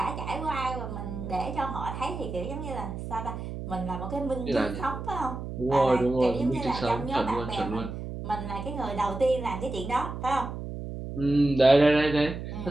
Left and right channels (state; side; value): noise; right; hum, 7 dB below the sound